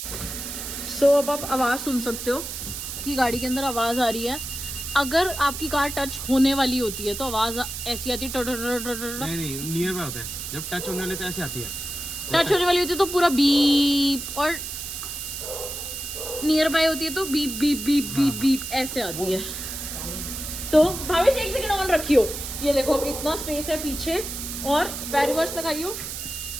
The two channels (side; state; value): right; noise; hiss, 7 dB below the sound